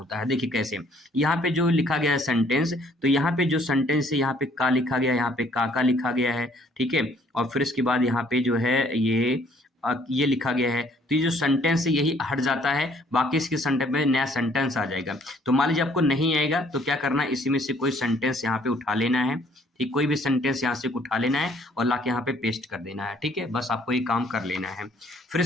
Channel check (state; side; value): normal; both; correlation 0.62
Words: है। देखिए कैसे, यहाँ पे जो लिखा गया है सेंटेंस, तो यहाँ पे जो सेंटेंस है यहाँ पे का लिखा गया है, यहाँ पे का लिखा गया है, ठीक है? और फिर इसके बाद यहाँ पे जो है ये लिखा गया है। तो ये जो सेंटेंस है यही हट जाता है, बाकी इसके सेंटेंस में नया सेंटेंस आ जाएगा। तो मान लीजिए आपको नहीं आएगा तो क्या करना है, इसी में से कोई सेंटेंस यहाँ पे उठा लेना है, ठीक? कोई भी सेंटेंस यहाँ से उठा लेना है और लाके यहाँ पे पेस्ट कर देना है, ठीक है? बस आपको ये काम कर लेना है। फिर